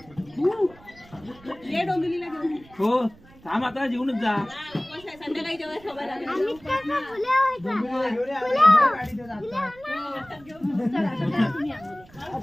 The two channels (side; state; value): right; noise; rumble, 24 dB below the sound